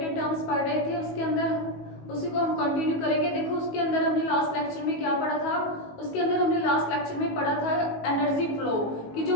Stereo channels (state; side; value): late; right; 19 ms